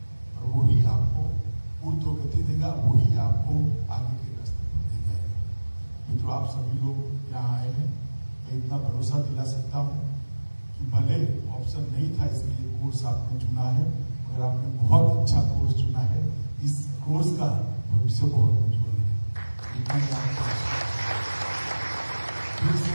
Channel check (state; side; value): inverted; both; correlation -1.00